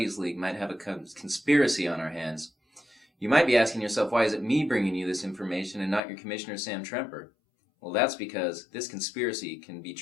League might have a conspiracy on our hands. You might be asking yourself, why is it me bringing you this information and not your Commissioner Sam Tremper? Well, that's because this conspiracy can be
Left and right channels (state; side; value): drops out; right; at 6.0 s